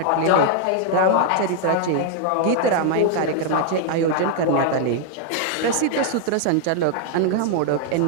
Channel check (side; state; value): both; different; correlation 0.00